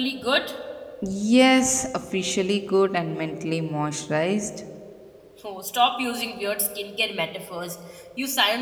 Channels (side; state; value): both; identical; correlation 1.00